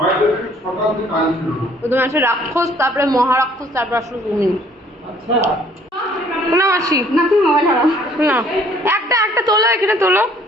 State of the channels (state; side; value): normal; both; correlation 0.59